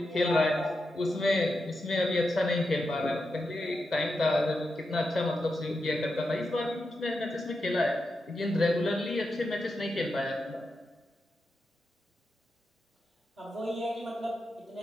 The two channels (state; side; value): normal; both; correlation 0.87